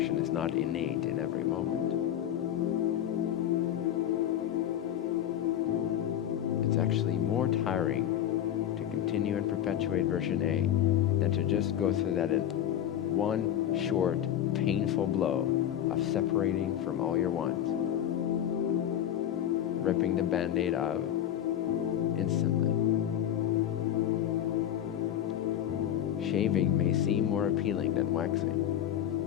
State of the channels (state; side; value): quieter; right; 10.8 dB